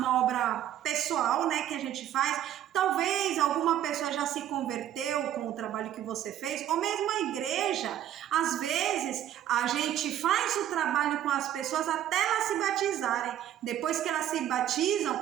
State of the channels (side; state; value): left; quieter; 11.3 dB